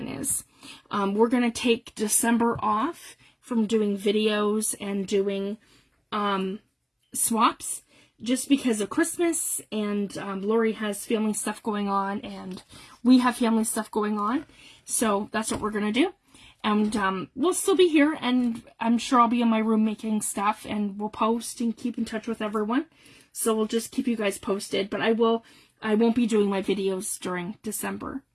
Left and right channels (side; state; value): both; identical; correlation 1.00